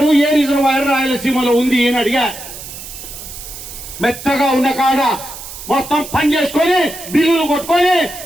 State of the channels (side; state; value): right; noise; hiss, 12 dB below the sound